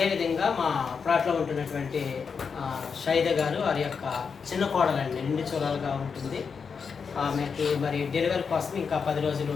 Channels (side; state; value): right; quieter; 5.8 dB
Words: మా ప్లాట్లో ఉంటున్నటువంటి షైద గారు, వారి యొక్క చిన్న కోడలండి, నిండు చూడాలుగా ఉంటుంది. ఆమెకి మరి డెలివరీ కోసం ఇంకా 10 రోజులు